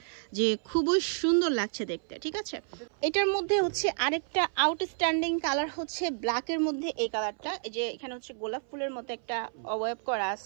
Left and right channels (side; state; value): left; silent; 58 dB below the other